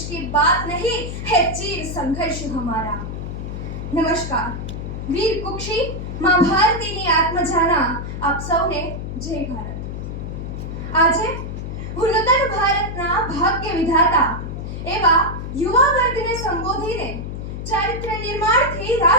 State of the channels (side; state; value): left; noise; hum, 6 dB below the sound